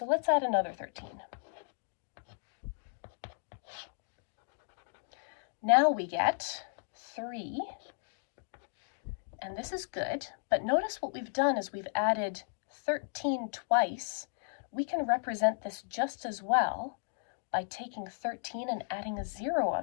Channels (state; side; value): silent; right; digital silence